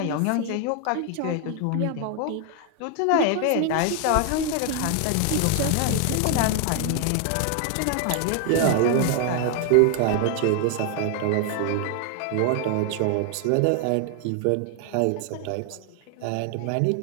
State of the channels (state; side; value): different; both; correlation 0.00